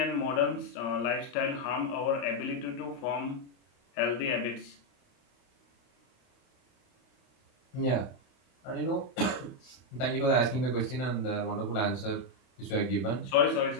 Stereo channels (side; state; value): right; late; 31 ms